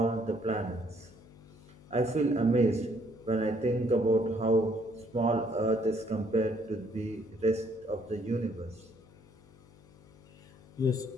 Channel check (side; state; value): left; noise; hum, 24 dB below the sound